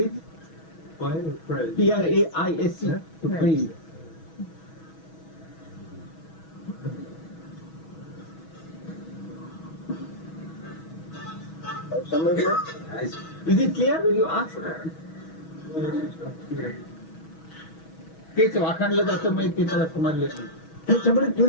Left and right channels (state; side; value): late; right; 6.2 ms